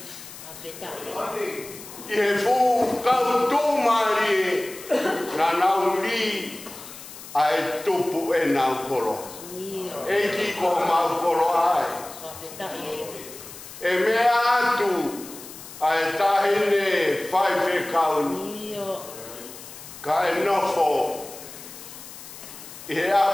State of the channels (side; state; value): left; noise; hiss, 15 dB below the sound